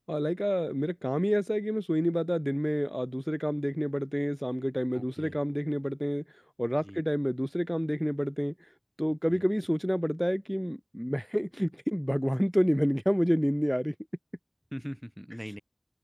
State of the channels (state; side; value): identical; both; correlation 1.00